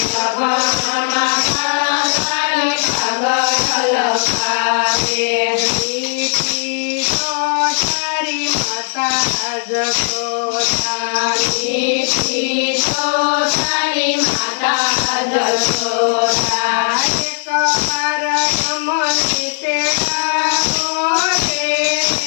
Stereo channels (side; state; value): right; silent; 64 dB below the other